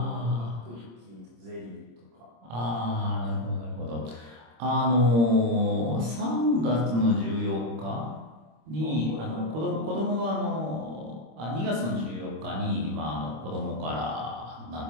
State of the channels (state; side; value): late; left; 26 ms